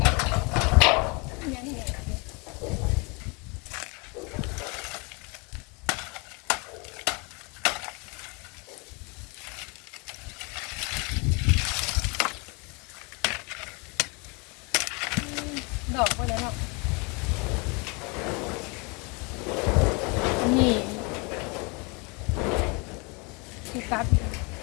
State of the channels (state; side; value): quieter; right; 30.5 dB